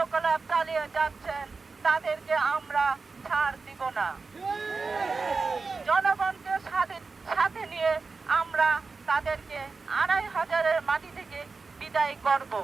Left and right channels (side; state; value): left; quieter; 4.3 dB